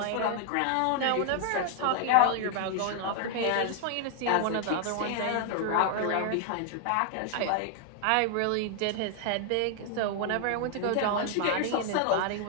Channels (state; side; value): different; both; correlation 0.00